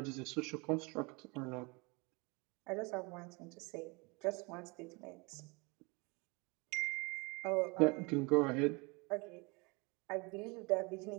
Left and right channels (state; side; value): quieter; left; 28.2 dB